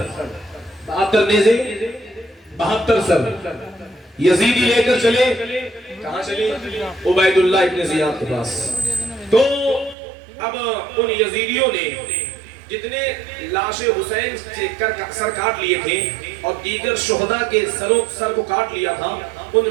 72 نیزے 72 سر یزیدی لے کر چلے، کہاں چلے؟ عبید اللہ ابن زیاد کے پاس۔ تو اب ان یزیدیوں نے جتنے لاش حسین سے سر کاٹ لیے تھے اور دیگر شہداء کے سر کو کاٹ لیا تھا، ان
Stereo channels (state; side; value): drops out; left; at 10.0 s